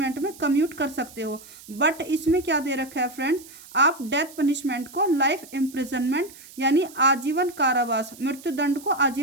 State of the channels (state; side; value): noise; right; hiss, 19 dB below the sound